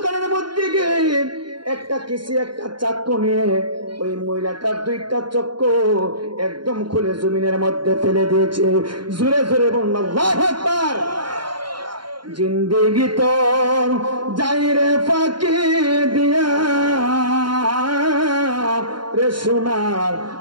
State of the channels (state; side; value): late; left; 0.72 ms